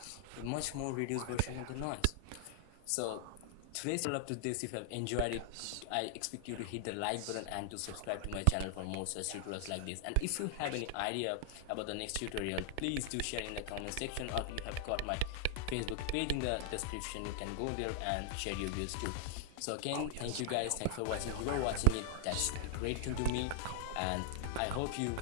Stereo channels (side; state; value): both; different; correlation 0.00